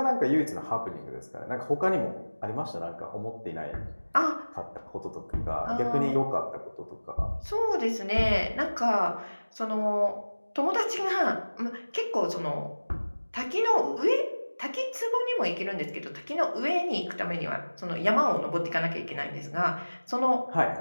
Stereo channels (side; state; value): both; inverted; correlation -1.00